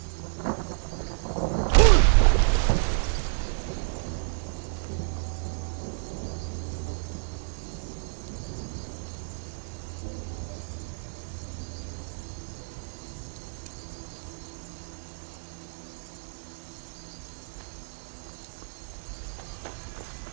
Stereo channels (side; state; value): left; silent; 58 dB below the other